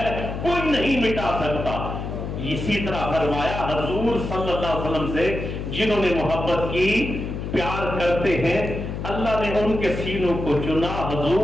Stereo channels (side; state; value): left; noise; hum, 5 dB below the sound